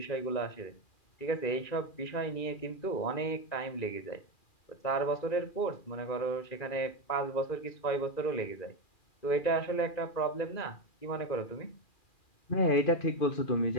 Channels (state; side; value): late; right; 2.4 ms